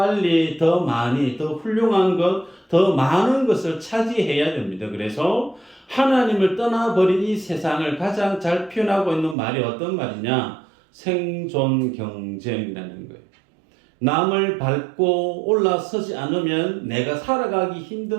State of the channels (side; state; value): left; drops out; at 9.3 s